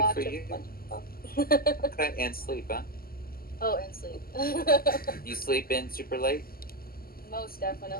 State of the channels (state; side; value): late; right; 0.43 ms